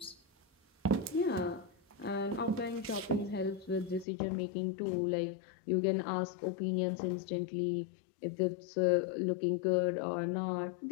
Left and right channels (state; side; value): drops out; right; at 4.0 s